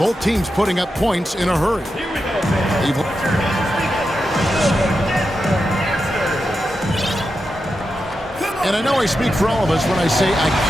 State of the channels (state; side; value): normal; both; correlation 0.88